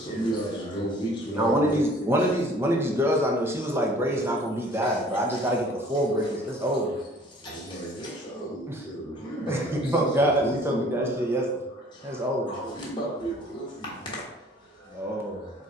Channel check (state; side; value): normal; both; correlation 0.53